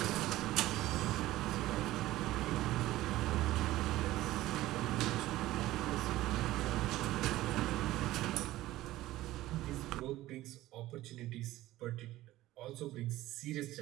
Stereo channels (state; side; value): quieter; left; 16.1 dB